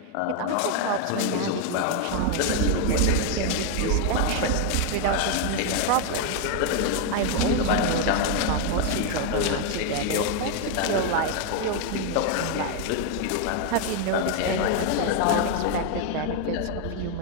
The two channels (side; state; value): both; different; correlation 0.01